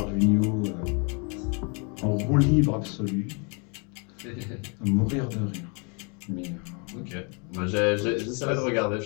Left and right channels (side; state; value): right; quieter; 35.1 dB